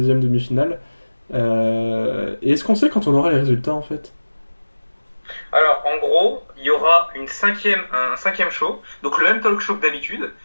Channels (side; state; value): both; inverted; correlation -1.00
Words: demi-finale. Et est-ce qu'on sait quand on aura les résultats en fait? Alors en gros, il y aura un cinquième show, donc le même talk show que d'habitude,